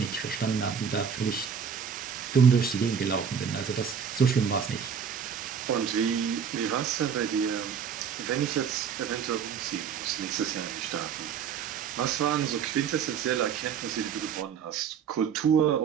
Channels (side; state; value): left; quieter; 7.1 dB